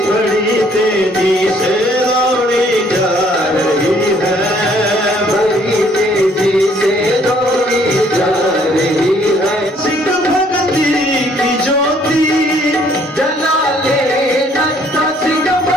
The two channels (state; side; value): normal; both; correlation 0.63